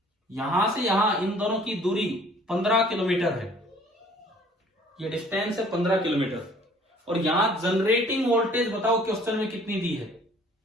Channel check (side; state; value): both; normal; correlation 0.55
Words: यहां से यहां इन दोनों की दूरी 15 किलोमीटर है, ये डिस्टेंस है 15 किलोमीटर। और यहां जनरेटिंग वोल्टेज बताओ क्वेश्चन में कितनी दी है,